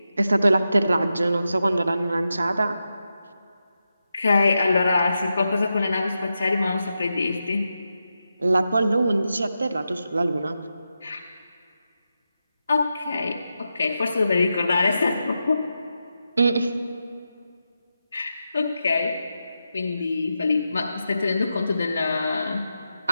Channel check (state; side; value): inverted; both; correlation -0.88